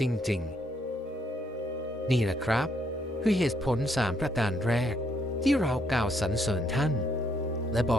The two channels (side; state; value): both; normal; correlation 0.72